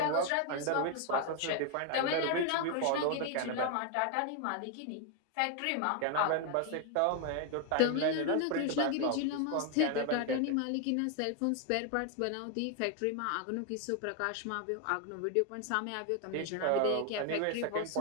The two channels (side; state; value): both; different; correlation 0.01